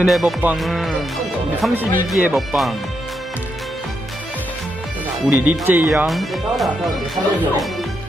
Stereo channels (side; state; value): both; normal; correlation 0.81